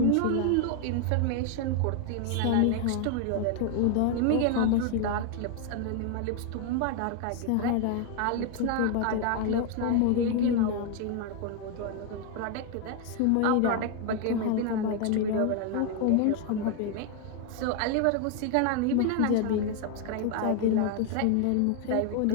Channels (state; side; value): different; both; correlation 0.00